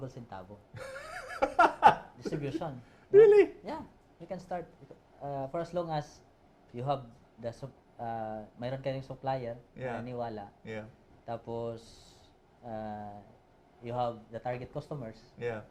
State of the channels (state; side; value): identical; both; correlation 1.00